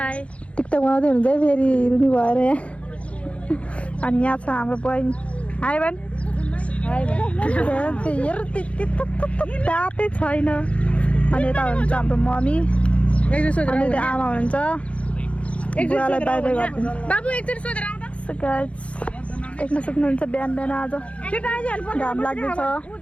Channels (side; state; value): right; late; 0.062 ms